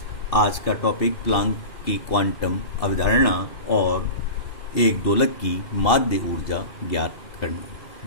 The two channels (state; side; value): late; right; 2.7 ms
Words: आज का टॉपिक, प्लांक की क्वांटम अवधारणा और एक दोलक की माध्य ऊर्जा ज्ञात करना।